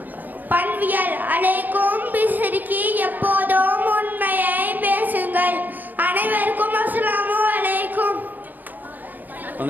பண்பியல் அலைக்கும் பிசிறிக்கு எப்போதும் உண்மையை பேசுங்கள். அனைவருக்கும் அஸ்ஸலாமு அலைக்கும்.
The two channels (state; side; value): late; left; 0.085 ms